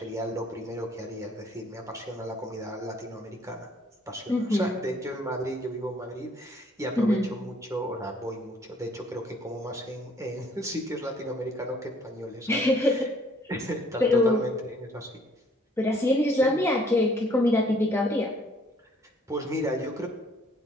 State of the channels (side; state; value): both; normal; correlation 0.61